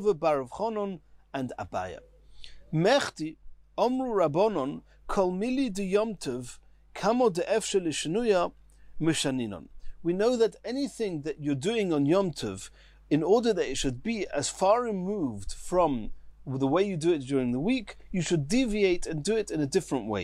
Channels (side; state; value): both; identical; correlation 1.00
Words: bar Rav Chonon and Abaya. Mechti, Omru Rabbonon, Kol Mili de Yom Tov, Kamo de Efshel Shnuya, Mishaninon. We know that anything that you're doing on Yom Tov, in order that it should be as far removed from the way you do it during the week, you should deviate and do it in a different